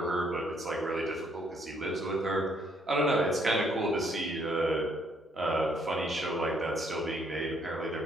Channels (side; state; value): both; normal; correlation 0.68